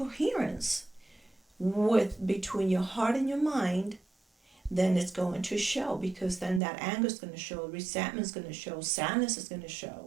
with between your heart and your mind, then it's going to show, because then that anger is going to show, resentment is going to show, sadness is going to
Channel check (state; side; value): drops out; left; at 6.6 s